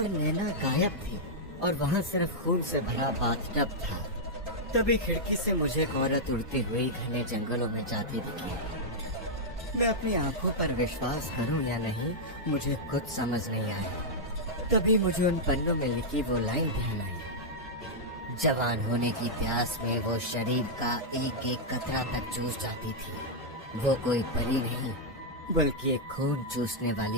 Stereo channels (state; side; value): normal; both; correlation -0.06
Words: नैना गायब थी और वहाँ सिर्फ खून से भरा बाथटब था। तभी खिड़की से मुझे एक औरत उड़ती हुई घने जंगलों में जाती दिखी। मैं अपनी आंखों पर विश्वास करूं या नहीं, मुझे कुछ समझ नहीं आया। तभी मुझे उन पन्नों में लिखी वो लाइन ध्यान आई। जवान होने की प्यास में वो शरीर का एक एक कतरा तक चूस जाती थी। वो कोई परी नहीं बल्कि एक खून चूसने